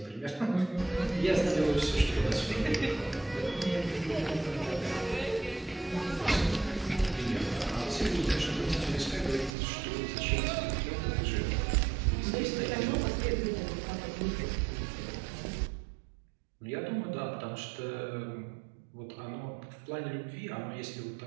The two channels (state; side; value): drops out; left; at 9.5 s